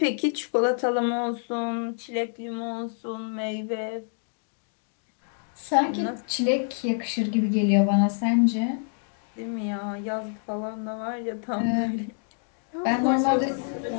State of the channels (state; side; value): silent; right; 55 dB below the other